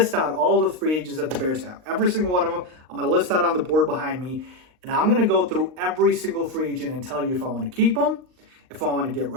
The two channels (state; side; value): late; left; 39 ms